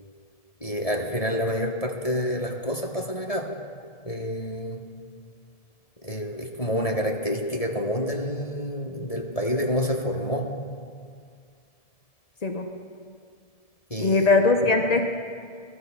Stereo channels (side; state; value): right; late; 1.7 ms